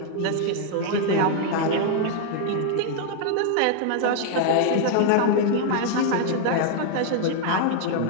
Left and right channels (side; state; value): both; different; correlation 0.00